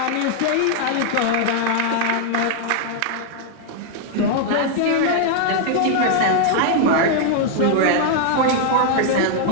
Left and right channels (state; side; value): different; both; correlation 0.00